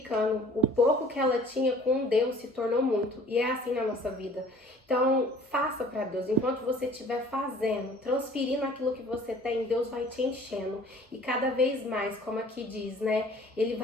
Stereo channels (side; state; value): both; normal; correlation 0.50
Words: O pouco que ela tinha com Deus se tornou muito. E é assim na nossa vida. Então, faça para Deus. Enquanto você estiver fazendo, transferindo aquilo que você tem, Deus vai te enchendo. E cada vez mais, como aqui diz, né? Ele